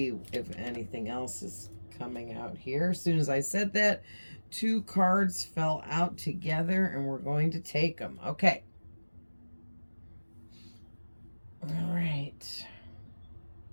if anything else is coming out here. As soon as I said that, two cards fell out together, and we're going to take them. Okay. All right.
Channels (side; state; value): both; inverted; correlation -1.00